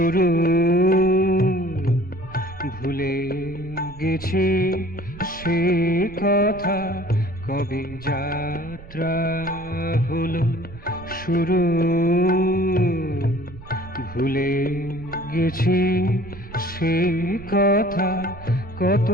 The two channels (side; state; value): right; noise; rumble, 17 dB below the sound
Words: ভুলে গেছি সে কথা, কবে যাত্রা হলো শুরু। ভুলে গেছি সে কথা, কত